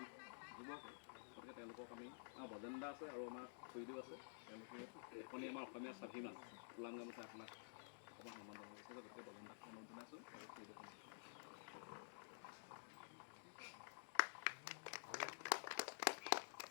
যুৱক, গতিকে তেওঁলোকক আমি আমাৰ বজেন্দা আছে আৰু আমাৰ খুৰীদেউ আছে, তেওঁলোকে এখনি আমাৰ অসমীয়া স্বাভিমান ওলাং গামোচা আপোনাক অকণমান সন্মান জনাব বিচাৰিছে। গতিকে বজেন্দাক সন্মান জনাইছোঁ আৰু খুৰীদেউ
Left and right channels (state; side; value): silent; right; digital silence